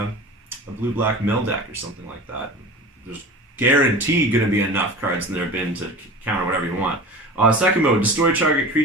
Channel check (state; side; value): normal; both; correlation 0.35